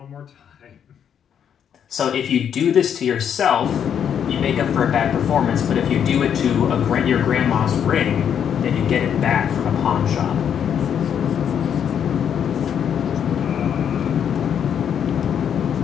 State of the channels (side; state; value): right; quieter; 8.5 dB